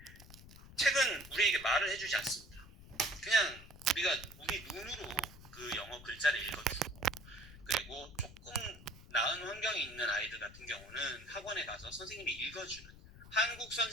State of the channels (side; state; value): left; noise; rumble, 18 dB below the sound